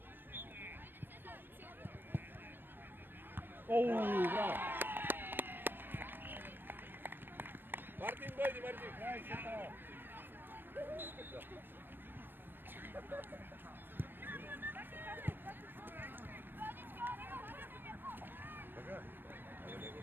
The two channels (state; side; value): late; left; 0.097 ms